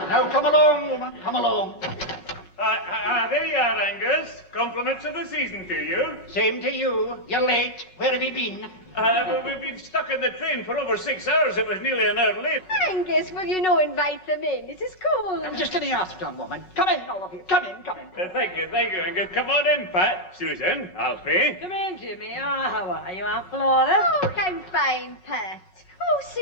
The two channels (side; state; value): right; late; 5.4 ms